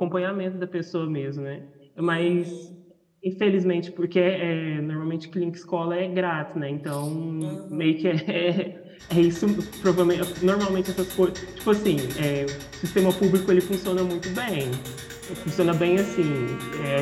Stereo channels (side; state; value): both; identical; correlation 1.00